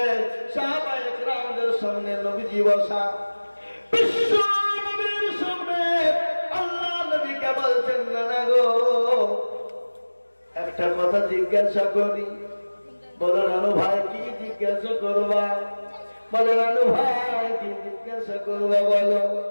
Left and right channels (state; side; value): inverted; both; correlation -1.00